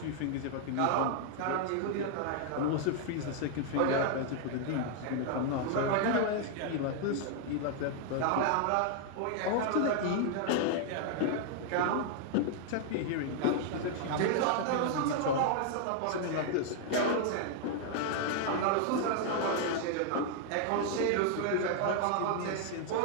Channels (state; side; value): different; both; correlation 0.00